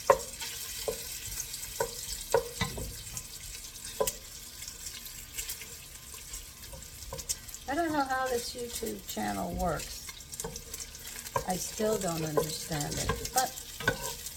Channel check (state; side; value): identical; both; correlation 1.00